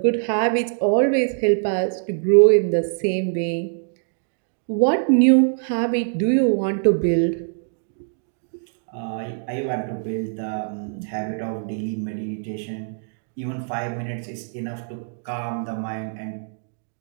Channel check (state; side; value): silent; left; digital silence